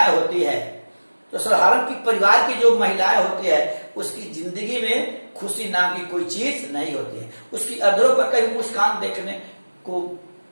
होती है, तो साधारण की परिवार की जो महिलाएं होती है, उसकी जिंदगी में खुशी नाम की कोई चीज नहीं होती है। उसकी अधरों पर कभी मुस्कान देखने को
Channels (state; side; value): inverted; both; correlation -1.00